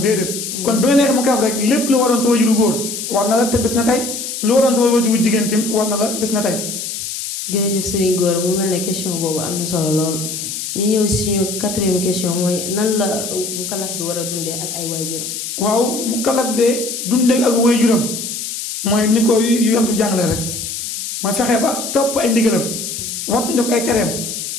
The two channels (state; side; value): noise; left; hiss, 6 dB below the sound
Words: déedéet. kon bi nga nekk mu kalaf rek lépp lu waroon sa waajur bu góor war na la te bis na tey. lu waroon sa waajur bu jigéen tim war na la bis na tey. jërëjëf Serigne Gora mu mel ne question boobu am na solo lool ñu ñëw si suñu quatrième question mooy nan la mu kalaf bi war a dundee ak ay waajuram. waaw mu kalaf de dundee ak waajuram mooy ni ko yontu jàngale rek mooy fexe ba topp ay ndigalam wattu ko ay tereem